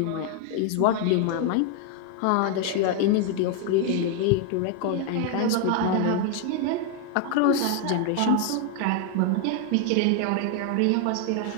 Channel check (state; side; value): different; both; correlation 0.01